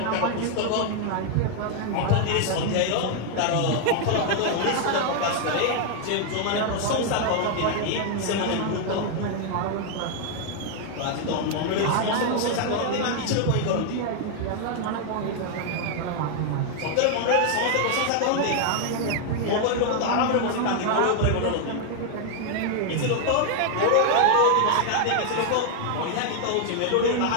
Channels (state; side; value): different; both; correlation 0.00